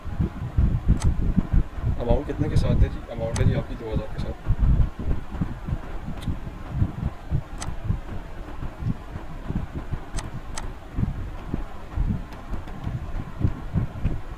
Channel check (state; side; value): identical; both; correlation 1.00